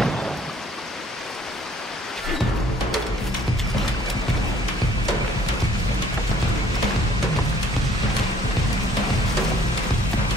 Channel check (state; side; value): normal; both; correlation 0.59